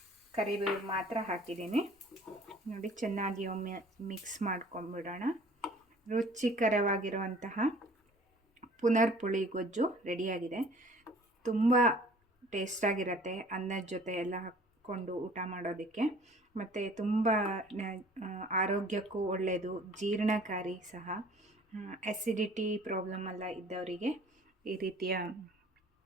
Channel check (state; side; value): normal; both; correlation 0.51